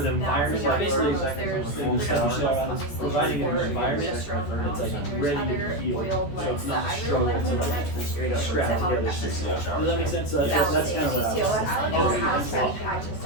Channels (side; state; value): right; late; 14 ms